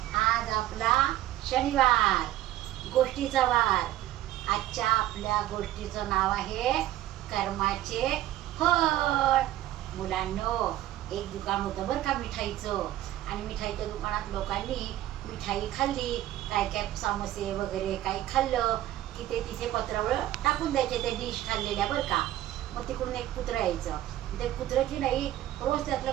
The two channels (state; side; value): quieter; left; 14.1 dB